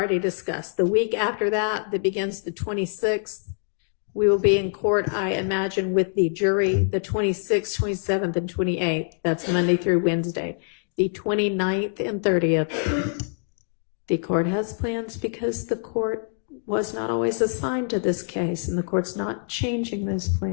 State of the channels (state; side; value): silent; right; 58 dB below the other